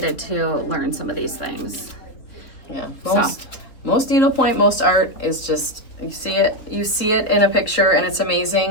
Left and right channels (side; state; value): right; late; 3.8 ms